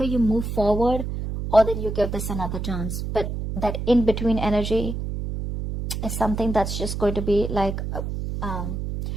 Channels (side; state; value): right; noise; hum, 4 dB below the sound